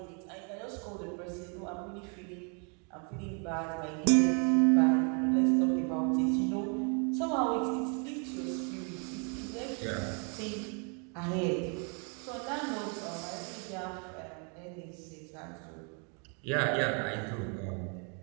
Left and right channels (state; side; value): quieter; left; 37.7 dB